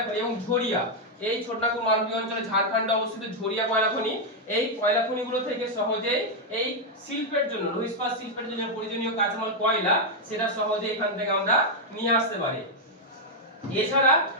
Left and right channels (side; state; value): both; normal; correlation -0.01